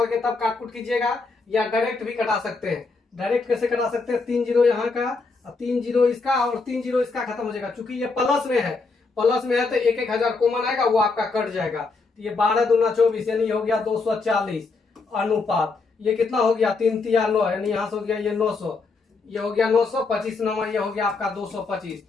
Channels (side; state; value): right; quieter; 4.1 dB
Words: के तब काटकुट कीजिएगा, या डायरेक्ट भी कटा सकते हैं। डायरेक्ट कैसे कटा सकते हैं 3 जीरो यहाँ का, 3 जीरो इसका और 3 जीरो इसका, खत्म हो जाएगा। चूंकि ये प्लस में है, प्लस में है तो 1,000 कॉमन आएगा, वो आपका कट जाएगा। तो ये 12 दूना 24 यानी हो गया 240 अनुपात, ये कितना हो गया 3 तिया 9 यानी यहाँ से हो गया ये 900, ये हो गया 900, 25 नंबर ये हो गया आपका 225।